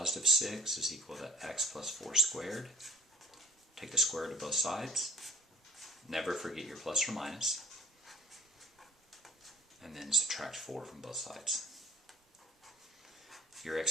6 is equal to x plus 4 squared. Take the square root of both sides. Never forget your plus or minus. And then subtract 4 from both sides. Your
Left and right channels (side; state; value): both; normal; correlation 0.46